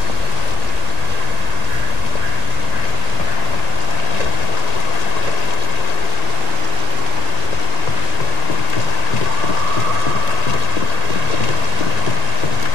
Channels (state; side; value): late; right; 1.9 ms